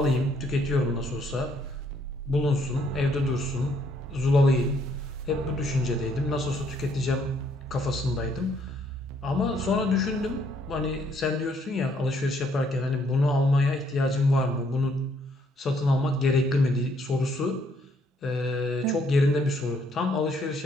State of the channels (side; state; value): both; normal; correlation 0.68